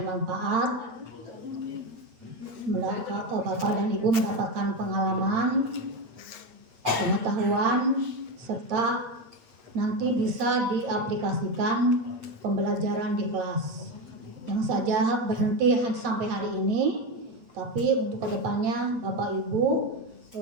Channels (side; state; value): left; late; 8.4 ms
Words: Bapak dan Ibu mendapatkan pengalaman, pengetahuan, serta nanti bisa diaplikasikan pembelajaran di kelas. Jangan saja berhenti sampai hari ini, tapi untuk kedepannya Bapak Ibu